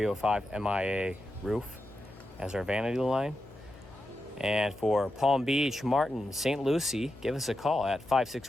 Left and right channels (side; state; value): left; noise; hum, 21 dB below the sound